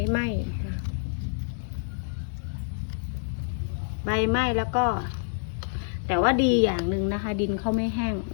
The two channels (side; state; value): right; silent; 60 dB below the other